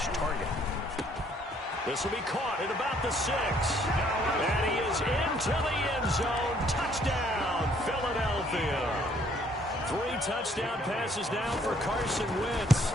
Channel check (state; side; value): normal; both; correlation 0.64